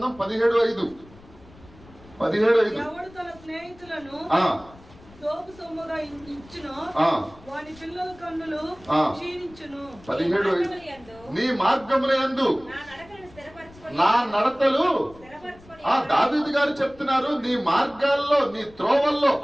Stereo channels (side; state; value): left; noise; rumble, 23 dB below the sound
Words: 17:5. ఎవడు తన స్నేహితులను దోపు సొమ్ముగా ఇచ్చును, వాని పిల్లల కన్నులు క్షీణించును. 17 నీ మార్గముల యందు నా నడతలు. దావీదు గారు చెప్తున్నారు, నీ మార్గాల్లో, నీ త్రోవల్లో.